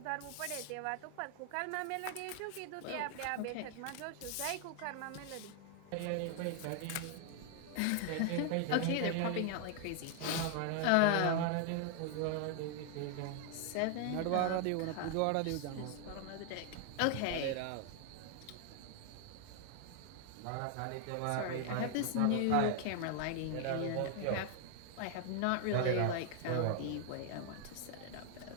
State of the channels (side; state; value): both; different; correlation 0.00